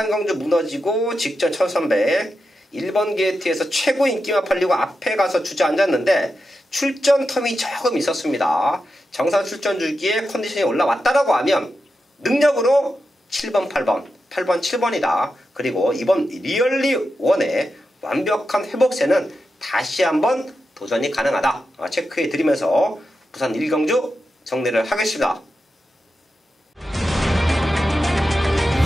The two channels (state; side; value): normal; both; correlation 0.89